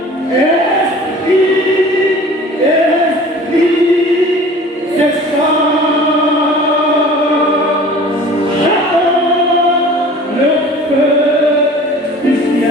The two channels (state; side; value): normal; both; correlation 0.44